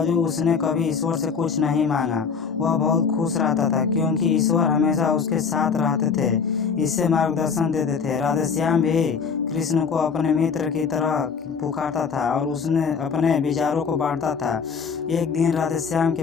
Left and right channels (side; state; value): right; quieter; 5.9 dB